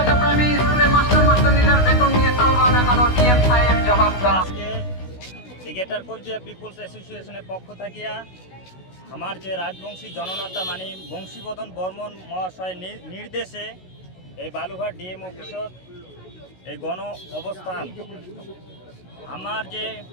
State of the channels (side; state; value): right; late; 16 ms